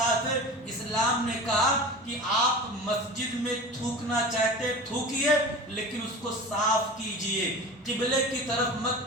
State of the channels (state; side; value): normal; both; correlation 0.34